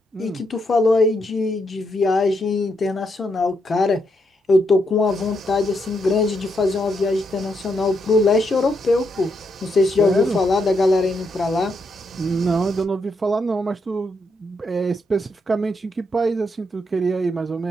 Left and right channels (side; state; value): both; normal; correlation 0.79